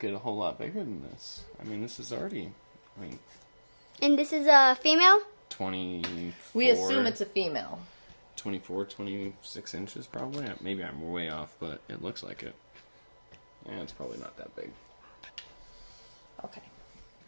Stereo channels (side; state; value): both; inverted; correlation -1.00